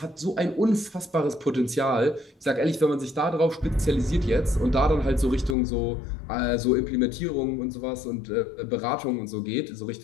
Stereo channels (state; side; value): drops out; right; at 5.6 s